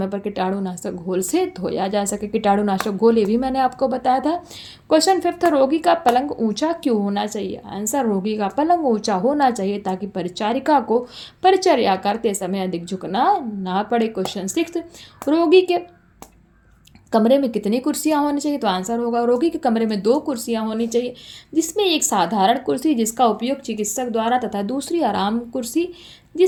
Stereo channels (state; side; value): identical; both; correlation 1.00